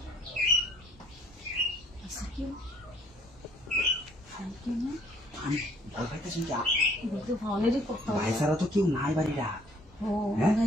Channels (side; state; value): both; normal; correlation 0.61